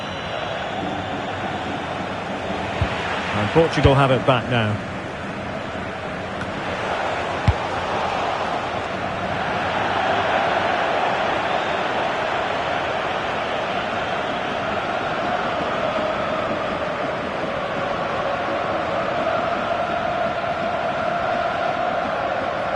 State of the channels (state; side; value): identical; both; correlation 1.00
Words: And Portugal have it back now.